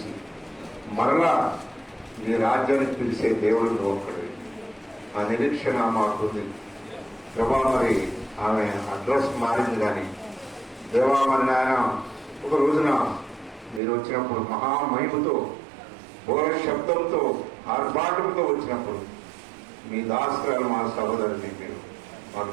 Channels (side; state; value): left; drops out; at 13.8 s